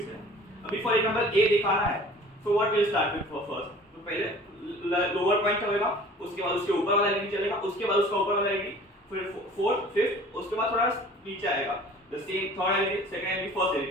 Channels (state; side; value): normal; both; correlation 0.47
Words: है. अभी for example A दिखाना है. So what will start with first? तो पहले lower point होगा, उसके बाद उसके ऊपर वाला एलईडी चलेगा, उसके बाद उसका ऊपर वाला एलईडी, फिर फोर्थ, फिफ्थ, उसके बाद थोड़ा नीचे आएगा. The same third LED, second LED, first